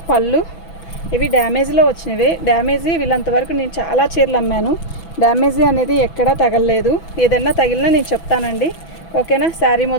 పళ్ళు, ఇవి డ్యామేజ్లో వచ్చినవి. డ్యామేజీ వీళ్ళంతవరకు నేను చాలా చీరలు అమ్మాను. డ్యామేజీ అనేది ఎక్కడా తగలలేదు. ఏదైనా తగిలినా నేను చెప్తానండి. ఓకేనా. శారీ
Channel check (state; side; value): late; right; 6.0 ms